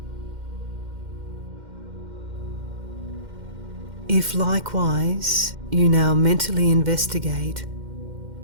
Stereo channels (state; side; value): late; left; 2.1 ms